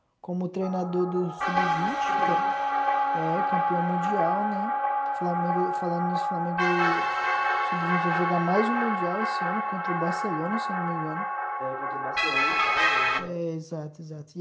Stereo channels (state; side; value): identical; both; correlation 1.00